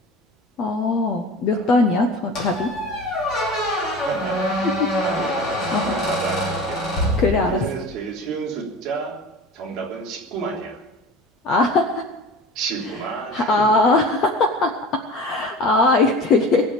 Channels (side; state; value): both; normal; correlation 0.36